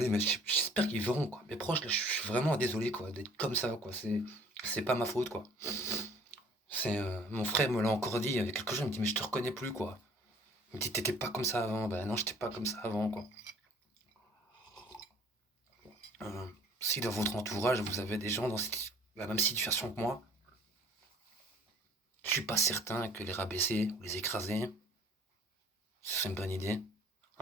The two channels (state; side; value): normal; both; correlation 0.53